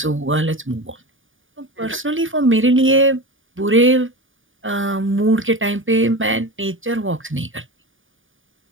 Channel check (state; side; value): late; left; 0.57 ms